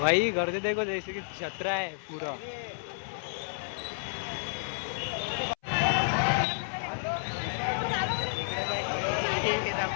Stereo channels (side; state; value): right; silent; 57 dB below the other